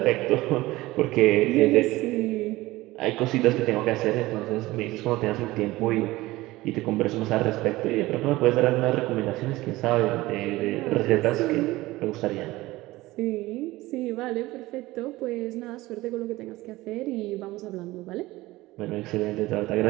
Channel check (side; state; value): left; quieter; 18.8 dB